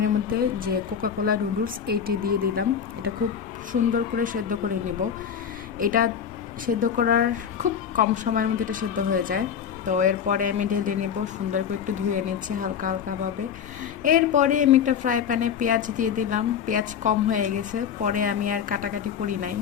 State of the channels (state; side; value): quieter; right; 7.9 dB